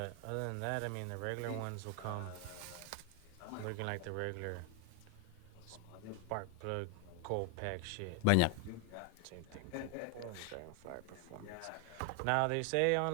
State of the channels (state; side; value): different; both; correlation 0.00